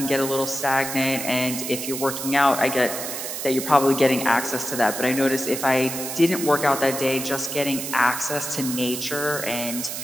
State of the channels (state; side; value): noise; right; hiss, 6 dB below the sound